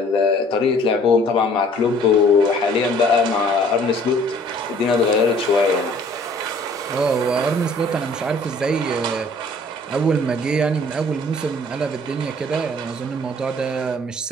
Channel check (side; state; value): both; normal; correlation 0.55